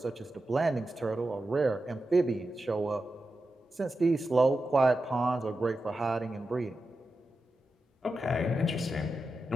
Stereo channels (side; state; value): both; normal; correlation 0.91